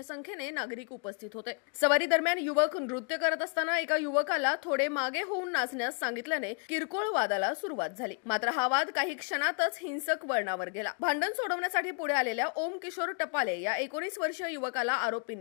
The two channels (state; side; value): quieter; right; 39.2 dB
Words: संख्येने नागरिक उपस्थित होते. सवारी दरम्यान युवक नृत्य करत असताना एका युवकाला थोडे मागे होऊन नाचण्यास सांगितल्याने किरकोळ वादाला सुरुवात झाली. मात्र हा वाद काही क्षणातच हिंसक वळणावर गेला. भांडण सोडवण्यासाठी पुढे आलेल्या ओम किशोर टपाले या 19 वर्षीय युवकाला